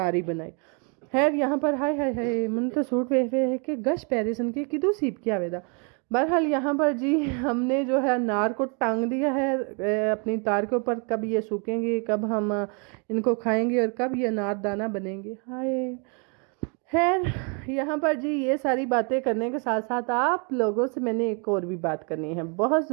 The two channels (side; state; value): left; quieter; 36.0 dB